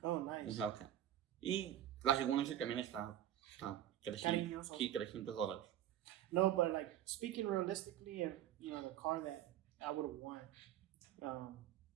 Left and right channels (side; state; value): left; quieter; 11.7 dB